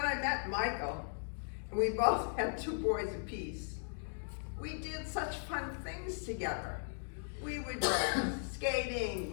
I met Michael, and we both had two boys apiece, we did such fun things together. We would go skating,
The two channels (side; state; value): right; silent; digital silence